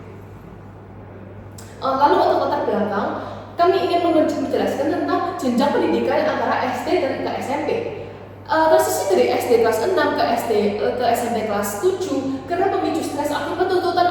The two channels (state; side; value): identical; both; correlation 1.00